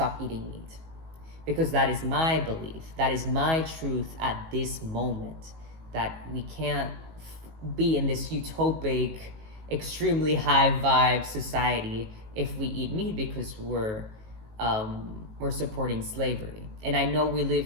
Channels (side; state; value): left; late; 19 ms